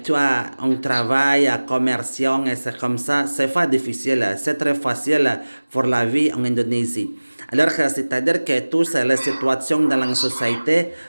tu as un travail, commercial, et c'est comme ça, c'est pas difficile. C'est très facile pour la vie en Indonésie. Alors, c'est-à-dire que toutes les situations dans la société,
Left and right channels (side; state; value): both; inverted; correlation -1.00